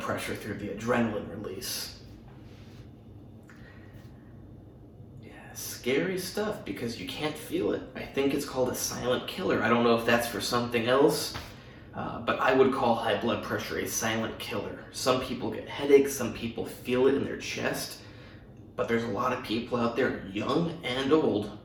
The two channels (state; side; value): identical; both; correlation 1.00